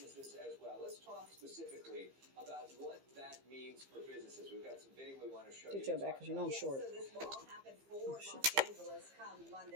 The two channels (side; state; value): left; late; 15 ms